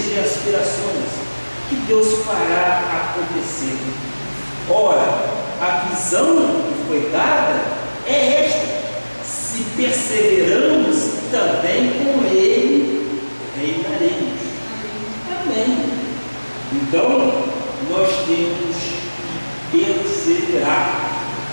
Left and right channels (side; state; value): both; inverted; correlation -1.00